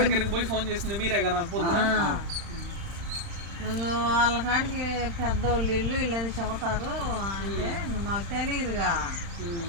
దగ్గరికి పోయి ఫోన్ చేసింది మీరే కదా పొద్దున. వాళ్ళ కాడికి పెద్దోళ్ళు ఇల్లు ఇల్లని చెబుతారు అంటే మాకు తెలియదుగా.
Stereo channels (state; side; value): late; left; 35 ms